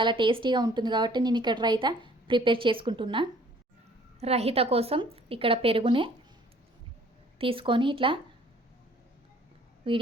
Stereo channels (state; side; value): normal; both; correlation 0.56